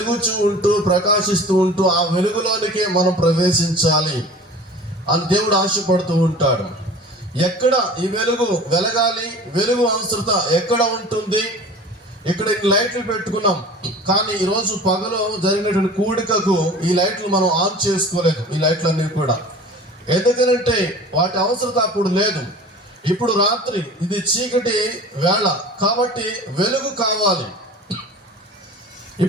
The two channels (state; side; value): normal; both; correlation 0.41